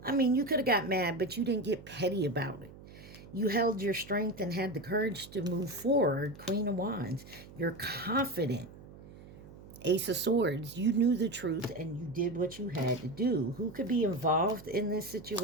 I mean, you could have got mad, but you didn't get petty about it. You held your strength and had the courage to move forward. Queen of Wands. You're confident. Ace of Swords. You knew the truth and you did what you had to do. Who could be involved in this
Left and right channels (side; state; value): right; noise; hum, 18 dB below the sound